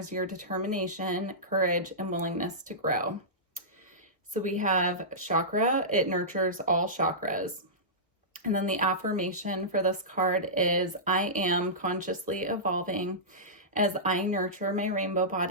your determination, courage, and willingness to grow. So we have chakra. It nurtures all chakras. And then the affirmation for this card is, I am consciously evolving as I nurture my rainbow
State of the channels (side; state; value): both; normal; correlation -0.17